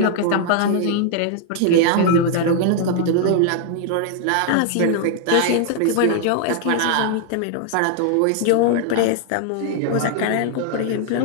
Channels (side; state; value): both; different; correlation 0.00